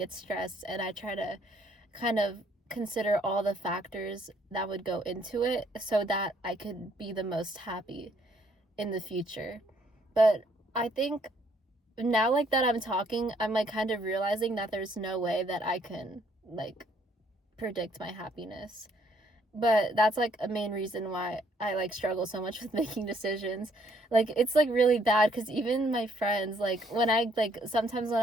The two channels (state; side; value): normal; both; correlation 0.67